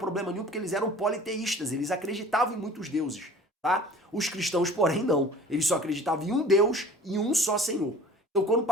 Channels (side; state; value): both; normal; correlation 0.45